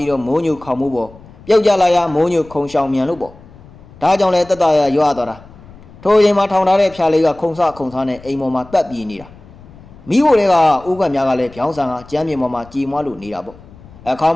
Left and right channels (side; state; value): left; noise; rumble, 22 dB below the sound